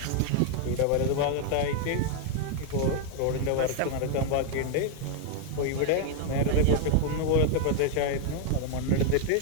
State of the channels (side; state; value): both; different; correlation 0.00